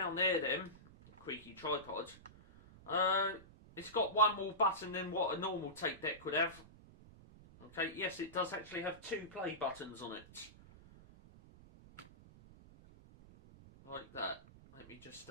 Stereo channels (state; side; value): noise; right; rumble, 21 dB below the sound